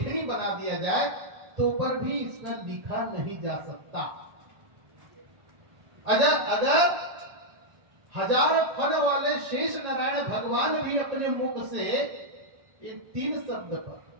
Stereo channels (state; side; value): late; left; 1.4 ms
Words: बना दिया जाए तो पर भी इसमें लिखा नहीं जा सकता। अगर हजार फन वाले शेष नारायण भगवान भी अपने मुख से इन तीन शब्द पर